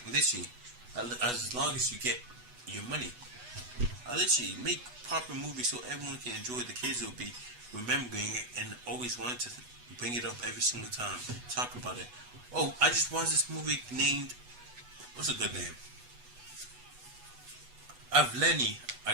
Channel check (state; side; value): late; left; 8.2 ms